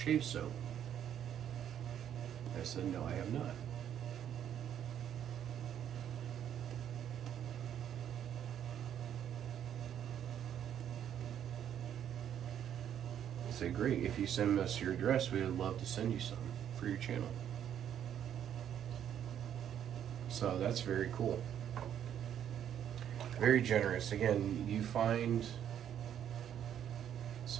soap? I said, no, I have not. I said, great, if you send us your address, we would love to send you some for your channel. So that's very cool. Very generous. Again, you find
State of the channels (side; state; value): left; quieter; 9.7 dB